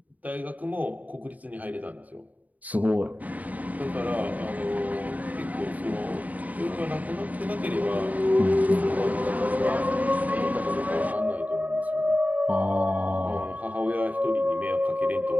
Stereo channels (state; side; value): late; left; 0.075 ms